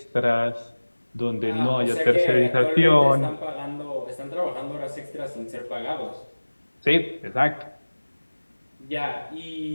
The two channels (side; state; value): both; inverted; correlation -1.00